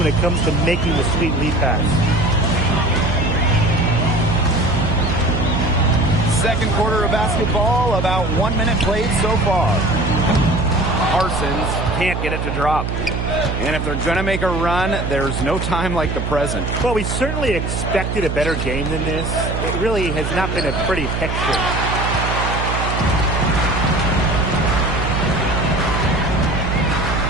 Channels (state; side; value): noise; right; hum, 2 dB below the sound